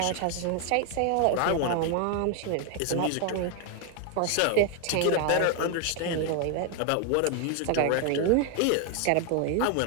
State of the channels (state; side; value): different; both; correlation 0.00